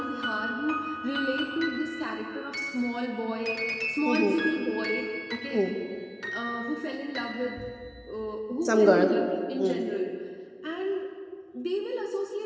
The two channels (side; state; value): both; identical; correlation 1.00